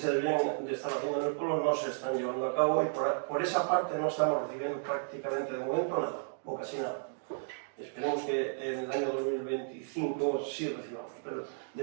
deberían de estar haciendo en el pueblo no se están llevando a cabo y por esa parte no estamos recibiendo prácticamente de momento nada, o casi nada. Esperemos que en el año 2025 sí recibamos, pero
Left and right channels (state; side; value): silent; left; digital silence